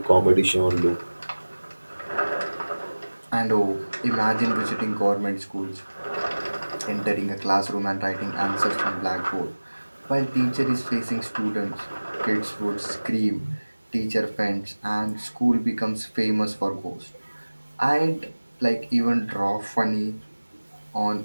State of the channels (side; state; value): both; inverted; correlation -1.00